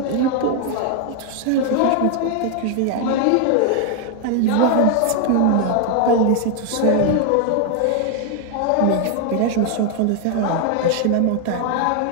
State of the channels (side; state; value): both; different; correlation 0.01